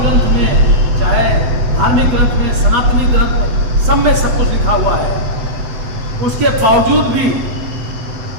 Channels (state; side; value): late; left; 8.2 ms